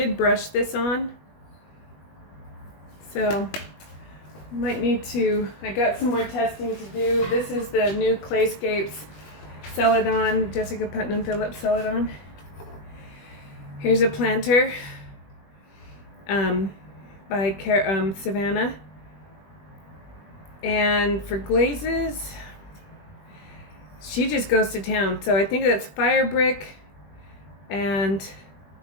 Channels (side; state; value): right; late; 20 ms